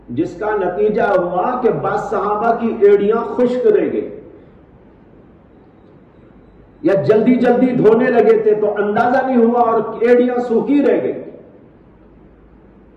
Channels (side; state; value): both; identical; correlation 1.00